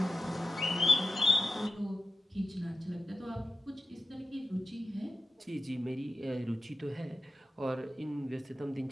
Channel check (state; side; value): normal; both; correlation 0.92